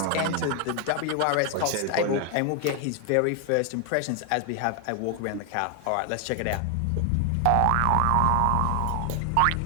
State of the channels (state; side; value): different; both; correlation 0.00